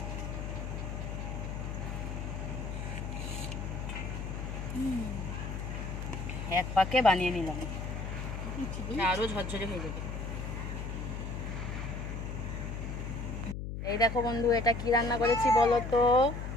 এক পাকে বানিয়ে নিলাম, আরো ঝরঝরে হয়ে যাবে। এই দেখো বন্ধু, এটা কি রান্না করেছি বলো তো?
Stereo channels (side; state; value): left; noise; hum, 5 dB below the sound